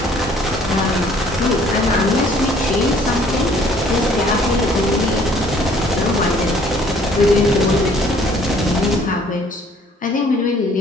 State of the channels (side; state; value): both; normal; correlation 0.59